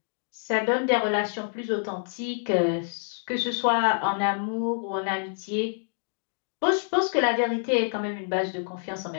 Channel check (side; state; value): right; silent; digital silence